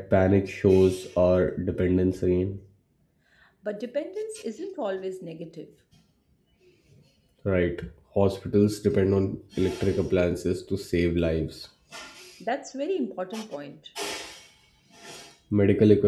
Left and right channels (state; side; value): identical; both; correlation 1.00